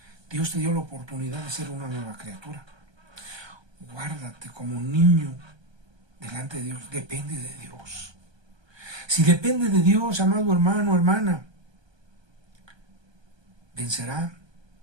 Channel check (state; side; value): late; left; 1.2 ms